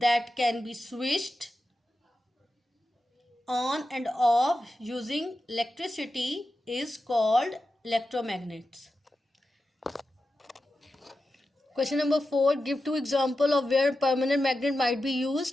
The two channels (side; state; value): both; normal; correlation 0.91